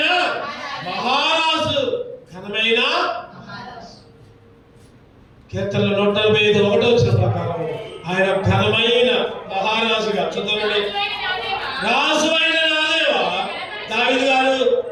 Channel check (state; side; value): identical; both; correlation 1.00